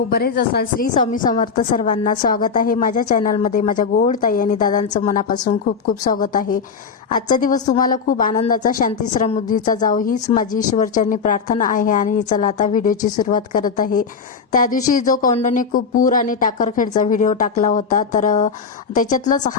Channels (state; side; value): quieter; right; 5.6 dB